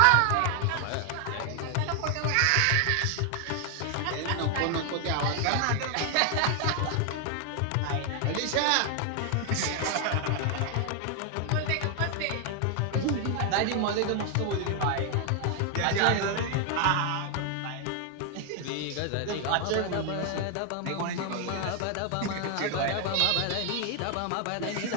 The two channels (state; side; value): different; both; correlation 0.00